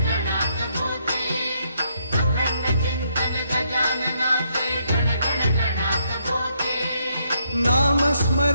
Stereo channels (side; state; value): both; inverted; correlation -0.75